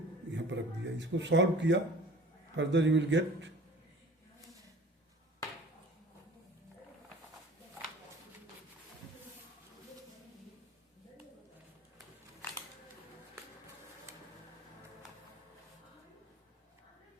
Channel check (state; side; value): normal; both; correlation 0.44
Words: यहाँ पर रख दिया. इसको सॉल्व किया, फर्दर यू विल गेट